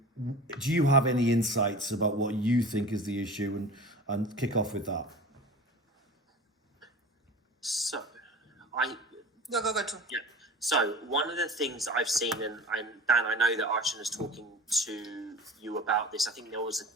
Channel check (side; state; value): both; normal; correlation 0.37